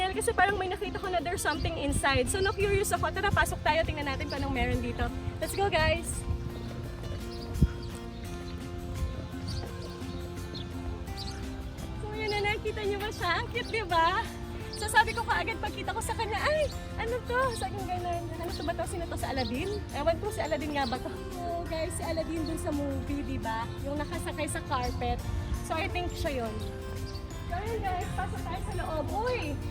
kasi parang may nakita ko na there's something inside. So na-curious ako, tara pasok tayo, tingnan natin kung anong meron dito. Let's go guys! So yun na, nakita niyo ba siya? Ang cute, diba? So sabi ko kaagad pagkita ko sa kanya, ay, ano to? Sabi ko gano'n, ano to ba to? Sino to? Sa Aladdin? Ewan ko si Aladdin nga ba to? So guys, si Aladdin dun sa movie, diba? Yung nakasakay sa carpet. So I think siya yun. So yun guys, pasok tayo sa loob. Uy,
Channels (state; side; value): identical; both; correlation 1.00